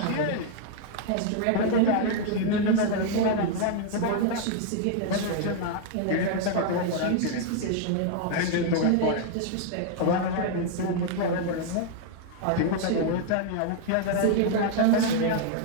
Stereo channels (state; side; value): different; both; correlation 0.00